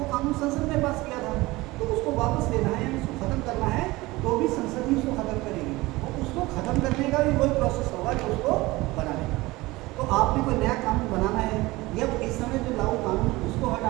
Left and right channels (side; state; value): left; quieter; 20.5 dB